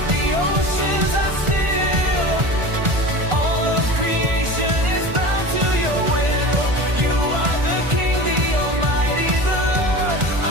the oceans are still. All of creation is bound to your will. You are the King, the Almighty, the Lord,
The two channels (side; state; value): left; late; 1.4 ms